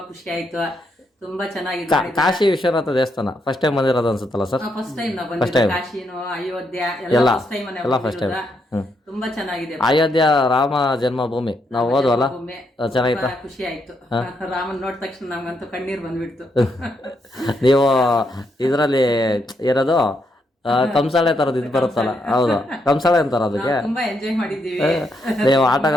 ಖುಷಿ ಆಯ್ತು. ತುಂಬಾ ಚೆನ್ನಾಗಿದೆ. ಕಾಶಿ ವಿಶ್ವನಾಥ ದೇವಸ್ಥಾನ ಫಸ್ಟ್ ಟೈಮ್ ಬಂದಿರೋದು ಅನ್ಸುತ್ತಲ್ಲ ಸರ್? ಫಸ್ಟ್ ಟೈಮ್ ನಾವು ಬಂದಿದ್ದೀವಿ. ಕಾಶಿನೋ ಅಯೋಧ್ಯೆ ಎಲ್ಲ ಫಸ್ಟ್ ಟೈಮ್. ತುಂಬಾ ಚೆನ್ನಾಗಿದೆ. ಅಯೋಧ್ಯೆ ರಾಮ ಜನ್ಮಭೂಮಿ ನಾವು ಹೋದ್ವಲ್ಲ, ಚೆನ್ನಾಗಿತ್ತು, ಖುಷಿ ಆಯ್ತು. ರಾಮನ್ ನೋಡಿದ ತಕ್ಷಣ ನಮ್ಗಂತೂ ಕಣ್ಣೀರ್ ಬಂದ್ಬಿಡ್ತು. ನೀವು ಇದರಲ್ಲಿ ಇರೋದು ಕಂಸಾಳೆ ತರದ್ ಇದು ಬರುತ್ತಲ್ಲ, ಹೌದು ಕಂಸಾಳೆ ಅಂತಾರ ಅದಕ್ಕೆ. ತುಂಬಾ ಎಂಜಾಯ್ ಮಾಡಿದ್ದೀವಿ. ನೀವು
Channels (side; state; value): both; normal; correlation 0.78